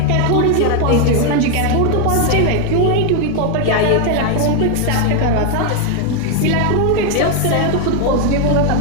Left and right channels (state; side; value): different; both; correlation 0.01